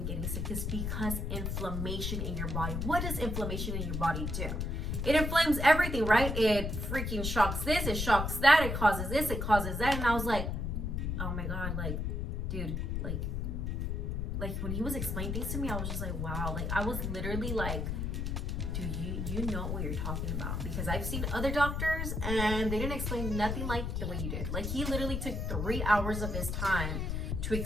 getting sick is because inflammation in your body. What does inflammation in your body do? It inflames everything, right? It freaking shocks this, it shocks that, it causes this, it causes that. And I was like, oh my God, like, dude, like when he was explaining things to me, I was just like, wow. Like, I was literally like, do you know what you're talking about? Because I've seen other doctors and they didn't explain nothing like the way you did. Like, he literally took 3 hours of his time to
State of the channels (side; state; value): left; noise; rumble, 1 dB below the sound